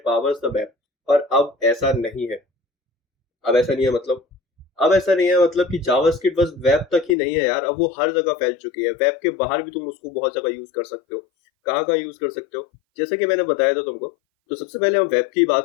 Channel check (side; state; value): right; drops out; at 7.2 s